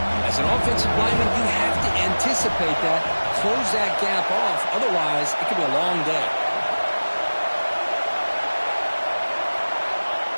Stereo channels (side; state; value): both; inverted; correlation -1.00